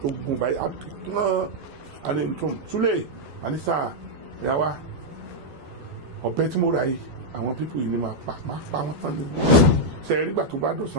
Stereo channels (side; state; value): left; late; 13 ms